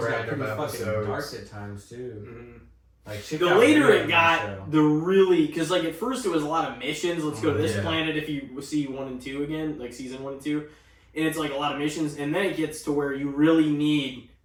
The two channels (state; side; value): identical; both; correlation 1.00